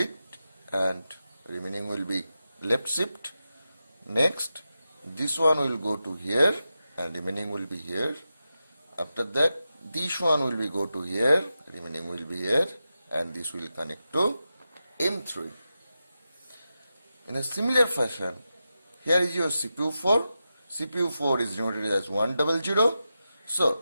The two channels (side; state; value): both; inverted; correlation -0.90